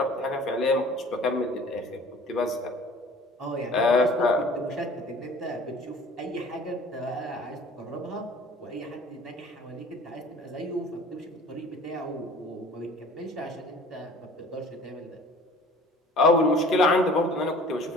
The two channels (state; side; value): normal; both; correlation 0.46